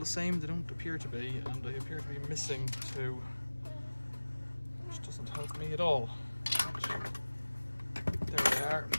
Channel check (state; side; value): inverted; both; correlation -1.00